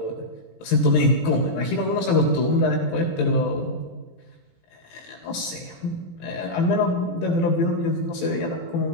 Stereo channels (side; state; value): right; late; 18 ms